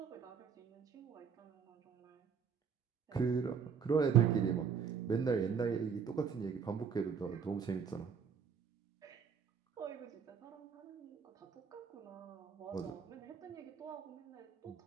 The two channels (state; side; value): quieter; left; 6.6 dB